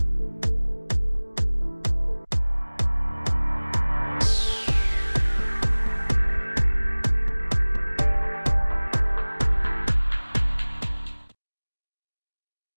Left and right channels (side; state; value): both; inverted; correlation -1.00